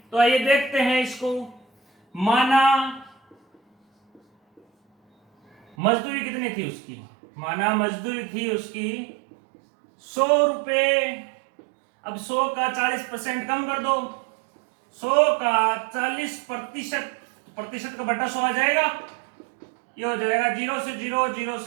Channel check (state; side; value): drops out; left; at 5.8 s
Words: तो आइए देखते हैं इसको। माना मजदूरी कितनी थी उसकी, माना मजदूरी थी उसकी 100 रुपए। अब 100 का 40% कम कर दो, 100 का 40% का बटा 100 आ जाएगा, ये हो जाएगा 0 से 0, 0